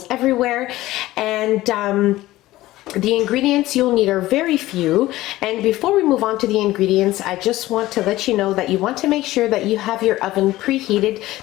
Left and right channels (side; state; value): right; quieter; 16.7 dB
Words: everywhere, and the ingredients you'll need are very few. And before we move on to the ingredients, I just want to let you know that you want to make sure that you have your oven preheated